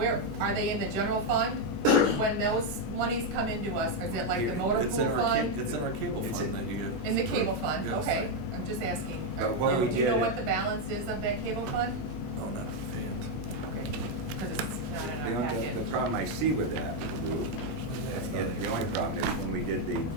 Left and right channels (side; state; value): left; noise; hum, 11 dB below the sound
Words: are they in the general fund? When those monies come into us, is it like the motor It's pool in our fund? It's in our cable It's fund in- that you get. In the cable fund, Yes. okay, I'm just asking. But what we Do you know did- what the balance is of that cable fund? Oh, not offhand. Okay, because it's, not in The our only, packet. the problem I see with that, Lou, and the only problem is when we did the